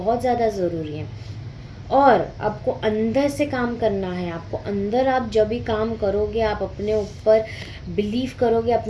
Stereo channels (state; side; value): identical; both; correlation 1.00